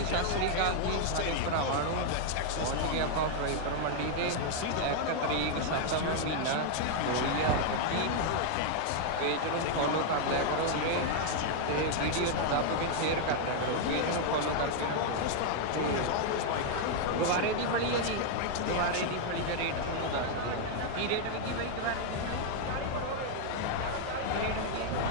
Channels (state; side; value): different; both; correlation 0.00